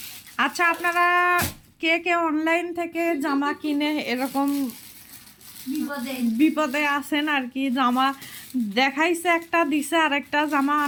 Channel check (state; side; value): identical; both; correlation 1.00